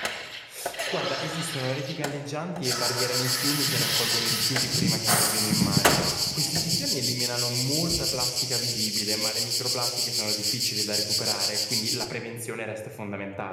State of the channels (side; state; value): both; identical; correlation 1.00